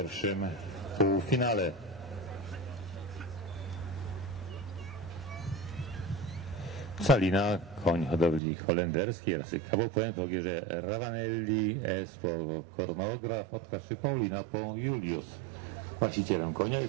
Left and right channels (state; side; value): drops out; left; at 8.4 s